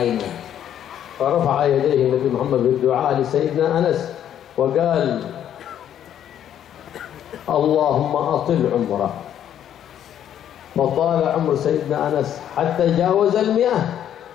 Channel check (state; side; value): quieter; right; 10.2 dB